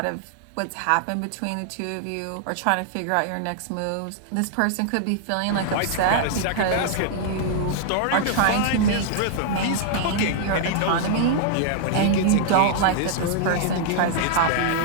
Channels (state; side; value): different; both; correlation -0.01